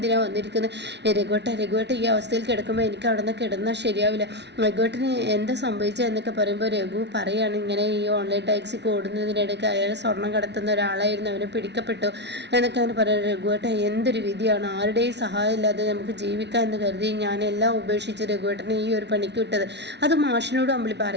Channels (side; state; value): left; late; 0.50 ms